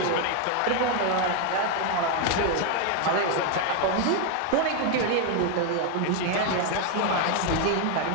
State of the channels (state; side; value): different; both; correlation 0.01